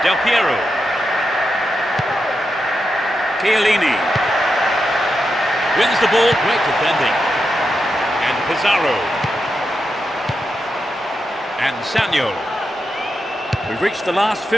Del Piero. Chiellini. Wins the ball, great defending. And Pizarro. And Samuel. We've reached the last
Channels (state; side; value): normal; both; correlation 0.87